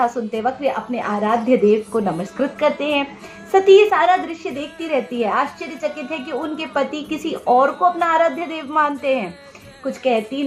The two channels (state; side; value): identical; both; correlation 1.00